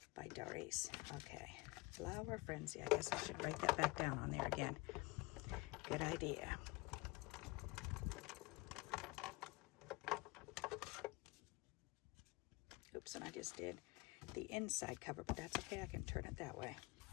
by Doris. Okay, Flower Frenzy. I guess I should write that back down on there again. Good idea. Oops, and I just did the inside cover, but that's okay. I can turn it that way.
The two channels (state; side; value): quieter; right; 23.9 dB